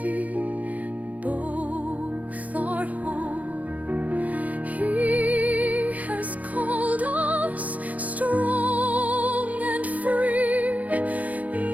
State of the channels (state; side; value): late; left; 0.074 ms